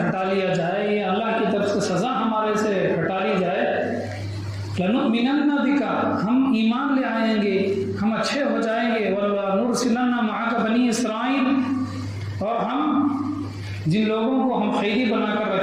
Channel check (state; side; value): identical; both; correlation 1.00